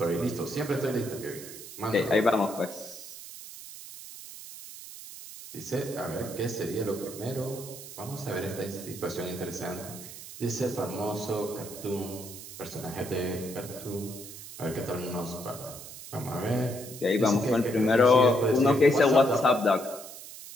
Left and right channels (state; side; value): noise; right; hiss, 13 dB below the sound